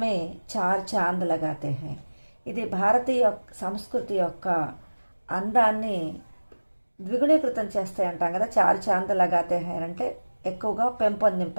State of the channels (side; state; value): both; inverted; correlation -1.00